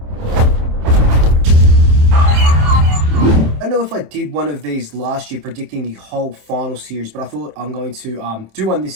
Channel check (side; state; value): left; late; 27 ms